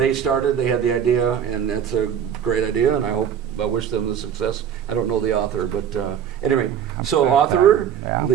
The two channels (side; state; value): left; quieter; 8.6 dB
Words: started, they had the idea, and that's a great idea, and I wish them the success. I don't know the author, but anyway. So author,